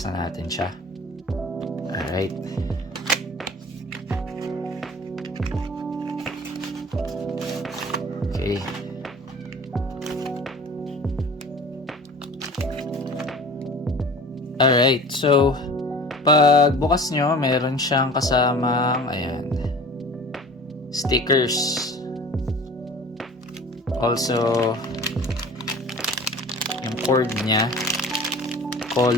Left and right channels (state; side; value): normal; both; correlation 0.42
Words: na natin siya. Alright. Okay. Alright, so pag bukas nyo, meron siyang kasamang ayan, stickers. Also, yung cord niya,